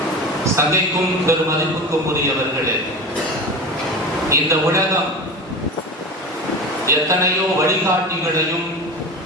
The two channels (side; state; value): both; normal; correlation 0.29